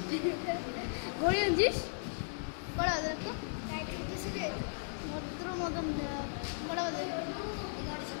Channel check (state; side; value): silent; right; digital silence